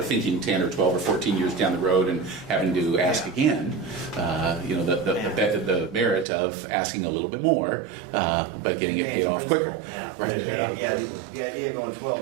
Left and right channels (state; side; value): drops out; left; at 6.2 s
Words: thinking 10 or 12 or 14 years down the road and having to ask again, the merit of asking a little bit more, but getting it paid off quicker. Yeah, Right. the idea of going